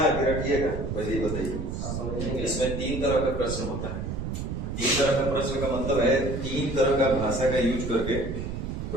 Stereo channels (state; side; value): noise; right; rumble, 4 dB below the sound